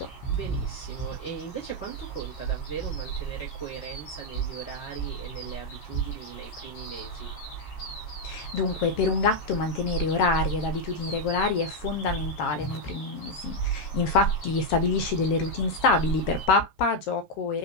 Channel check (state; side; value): late; right; 7.3 ms